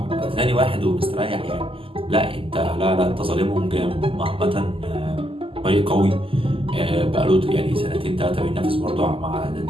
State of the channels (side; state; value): left; late; 0.26 ms